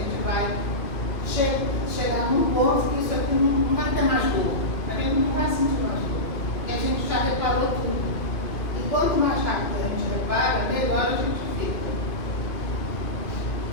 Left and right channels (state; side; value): late; right; 2.5 ms